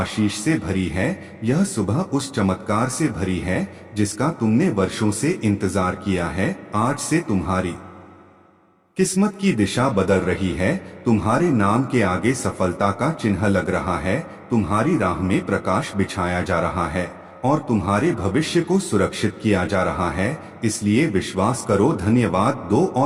से भरी है, यह सुबह उस चमत्कार से भरी है जिसका तुमने वर्षों से इंतजार किया है। आज से तुम्हारी किस्मत की दिशा बदल रही है। तुम्हारे नाम के आगे सफलता का चिन्ह लग रहा है, तुम्हारी राह में प्रकाश बिछाया जा रहा है और तुम्हारे भविष्य को सुरक्षित किया जा रहा है। इसलिए विश्वास करो, धन्यवाद दो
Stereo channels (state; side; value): identical; both; correlation 1.00